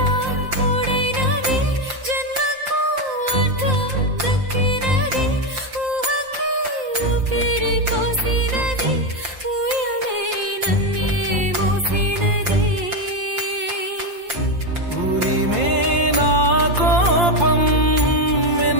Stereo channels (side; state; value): left; late; 5.8 ms